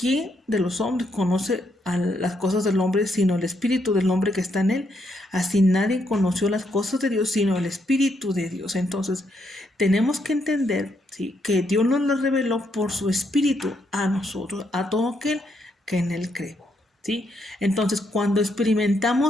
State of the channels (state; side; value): normal; both; correlation 0.76